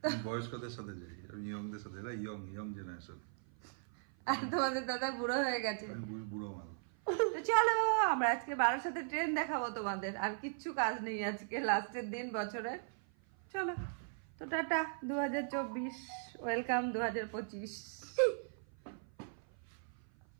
বয়স্কদের সাথে যাই। আমি ইয়ংদের সাথে, এরা ইয়ং জেনারেশন। আর তোমাদের দাদা বুড়ো হয়ে গেছে, বুড়ো মাল। তো চলো আমরা আজকে বারোর সাথে ট্রেন দেখাবো তোমাদের। আর কিচ্ছু কাজ নেই, আজকে লাস্টের দিন বছরের। চলো তো টাটা 2024, ওয়েলকাম 2025।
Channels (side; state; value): left; silent; 52 dB below the other